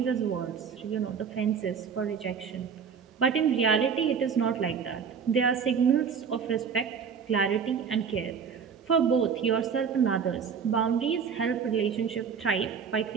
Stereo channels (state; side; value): quieter; left; 6.6 dB